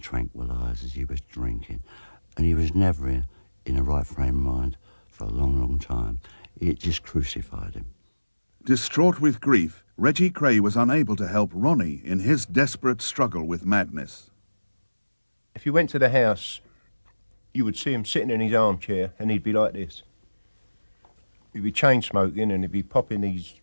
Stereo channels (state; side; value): inverted; both; correlation -1.00